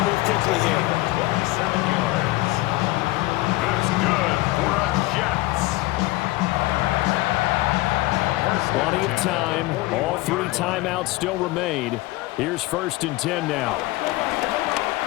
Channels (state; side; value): quieter; right; 19.7 dB